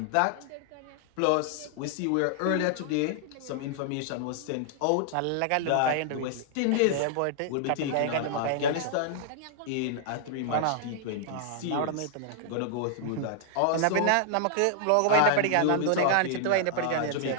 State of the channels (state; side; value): different; both; correlation -0.01